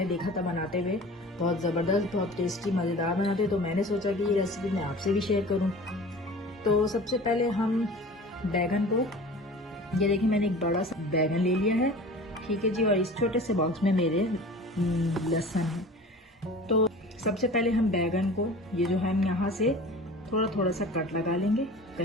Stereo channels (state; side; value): normal; both; correlation 0.40